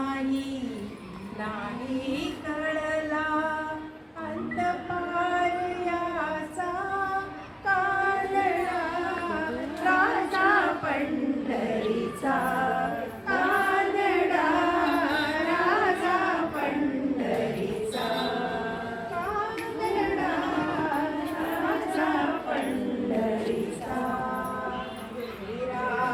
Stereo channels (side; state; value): both; identical; correlation 1.00